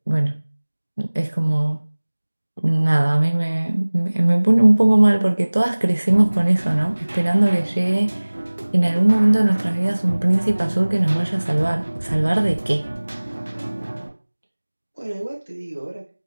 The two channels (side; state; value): both; inverted; correlation -1.00